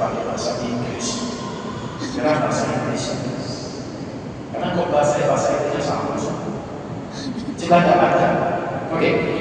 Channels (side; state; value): both; identical; correlation 1.00